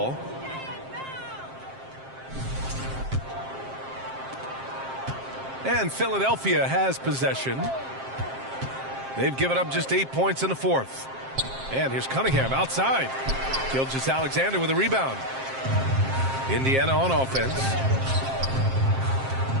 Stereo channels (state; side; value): late; left; 7.5 ms